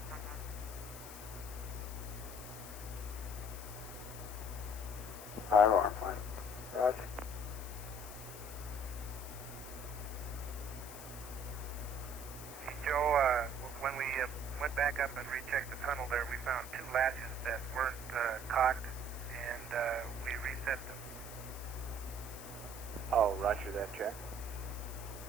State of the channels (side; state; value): left; noise; hiss, 12 dB below the sound